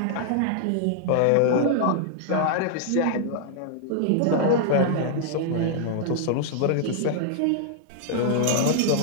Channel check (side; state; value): both; different; correlation -0.01